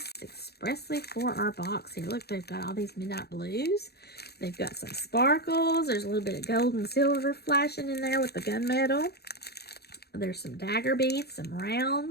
expressly for our box here. Look, they've got all these midnight blues. They've got some sparkles. There's a little bit of gold and silver flashing in there with the gunmetal. There's some dagger beads, some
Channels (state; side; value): late; right; 0.47 ms